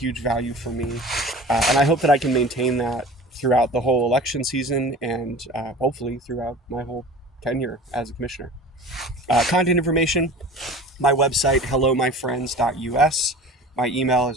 value for me. And I hope that I can maintain that throughout the whole election season and hopefully throughout my whole tenure as a commissioner. Contact information, my website, hellomyfriends.us. My email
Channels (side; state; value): both; normal; correlation 0.40